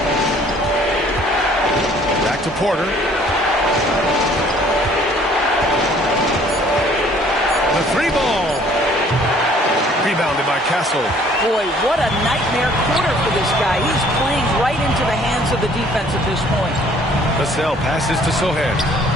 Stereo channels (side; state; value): both; normal; correlation 0.57